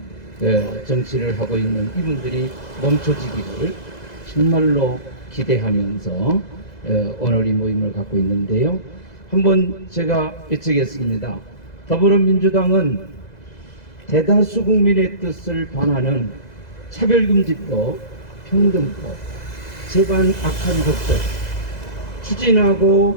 정치를 하고 있는 이분들이 멈춰지기를 정말로 기대하면서 오늘 이 모임을 갖고 있는데요. 한번 제가 여쭙겠습니다. 더불어민주당은 대다수 국민의 뜻을 반하는 차별금지법, 평등법, 제반 악한 법들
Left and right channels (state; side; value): late; right; 2.0 ms